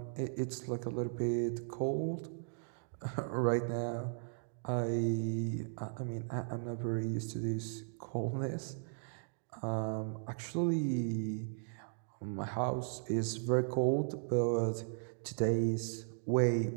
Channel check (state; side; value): silent; left; digital silence